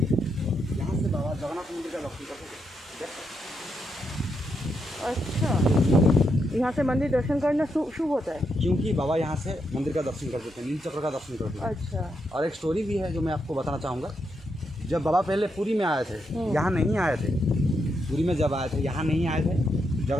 यहाँ से बाबा जगन्नाथ मंदिर का दर्शन करते थे। अच्छा, यहाँ से मंदिर दर्शन करना शुभ होता है? क्योंकि बाबा यहाँ से मंदिर का दर्शन करते थे, नील चक्र का दर्शन करते थे। अच्छा। और एक स्टोरी भी है जो मैं आपको बताना चाहूँगा। जब बाबा पहले पुरी में आए थे, यहाँ नहीं आए थे। पुरी में जब आए थे यहाँ नहीं आए थे,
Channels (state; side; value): normal; both; correlation 0.81